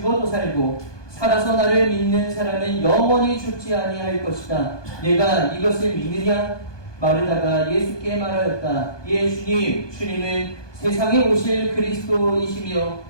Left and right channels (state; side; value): late; right; 1.2 ms